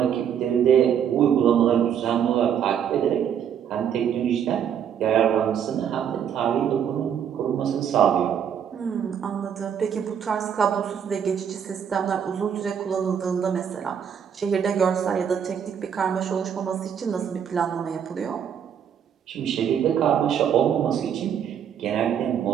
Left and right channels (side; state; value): left; quieter; 8.4 dB